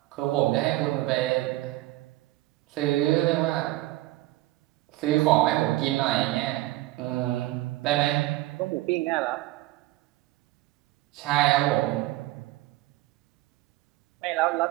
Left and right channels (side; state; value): left; quieter; 17.6 dB